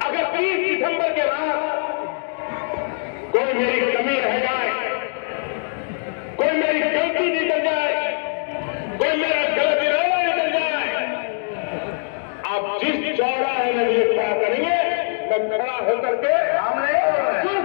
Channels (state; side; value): silent; right; digital silence